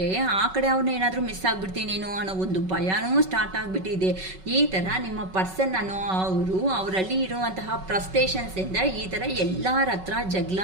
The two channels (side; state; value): left; late; 5.3 ms